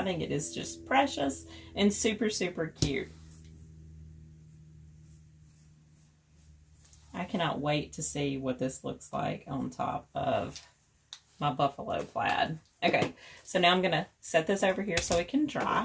think it is just precious and super, super cute. I cannot wait to see what this looks like on top of my buffalo plaid. Okay, so now I'm going to set this over here so it can dry.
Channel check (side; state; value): both; identical; correlation 1.00